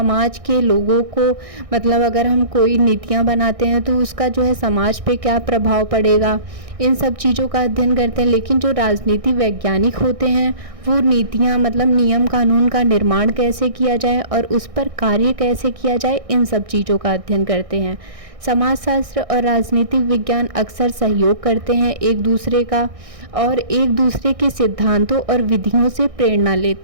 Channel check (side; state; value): left; late; 1.6 ms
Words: के लोगों को मतलब अगर हम कोई नीतियाँ बनाते हैं तो उसका जो है समाज पे क्या प्रभाव पड़ेगा, इन सब चीज़ों का अध्ययन करते हैं। लेकिन जो राजनीति वैज्ञानिक होते हैं वो नीतियाँ मतलब नियम कानून का निर्माण कैसे किया जाए और उस पर कार्य कैसे किया जाए, इन सब चीज़ों का अध्ययन करते हैं। समाजशास्त्र और राजनीतिक विज्ञान अक्सर सहयोग करते हैं एक दूसरे का, और एक दूसरे के सिद्धांतों और विधियों से प्रेरणा